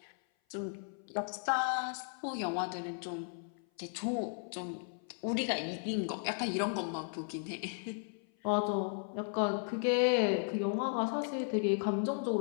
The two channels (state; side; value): silent; right; 54 dB below the other